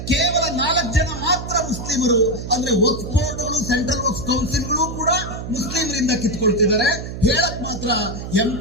ಕೇವಲ 4 ಜನ ಮಾತ್ರ ಮುಸ್ಲಿಮರು. ಅಂದ್ರೆ ವಕ್ಫ್ ಬೋರ್ಡ್ಗಳು ಸೆಂಟ್ರಲ್ ವಕ್ಫ್ ಕೌನ್ಸಿಲ್ಗಳು ಕೂಡ ಮುಸ್ಲಿಮರಿಂದ ಕಿತ್ಕೊಳ್ತಿದ್ದಾರೆ. ಹೇಳಕ್ ಮಾತ್ರ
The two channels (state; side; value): noise; right; hum, 8 dB below the sound